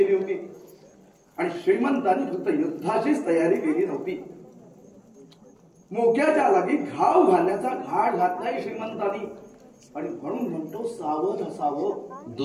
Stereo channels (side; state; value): both; identical; correlation 1.00